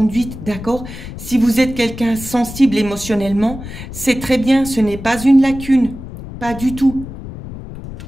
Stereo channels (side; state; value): left; noise; rumble, 12 dB below the sound